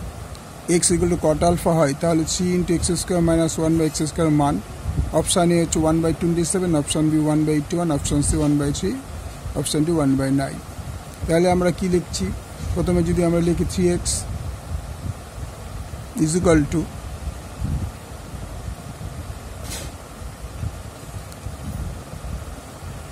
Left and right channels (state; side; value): identical; both; correlation 1.00